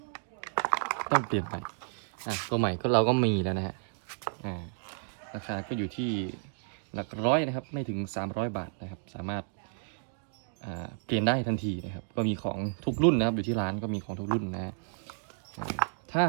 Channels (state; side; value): silent; left; digital silence